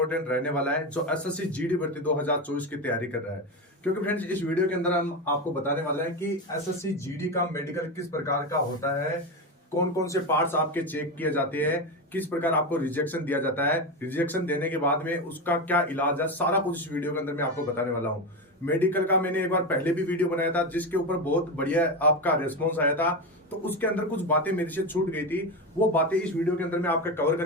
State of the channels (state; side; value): normal; both; correlation 0.16